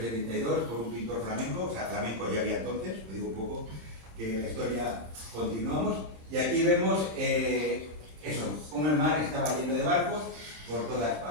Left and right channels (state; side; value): late; left; 26 ms